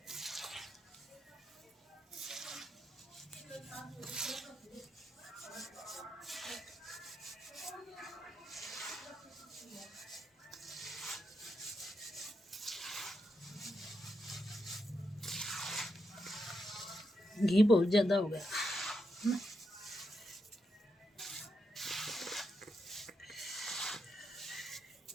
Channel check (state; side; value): normal; both; correlation 0.84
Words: घी बहुत ज़्यादा हो गया।